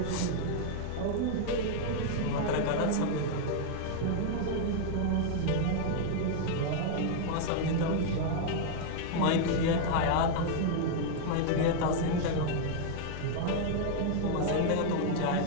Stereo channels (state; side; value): different; both; correlation 0.00